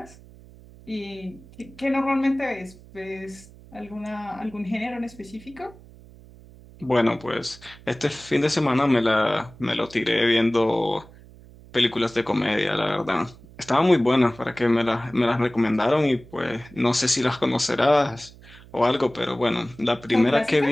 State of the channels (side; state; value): right; noise; hum, 22 dB below the sound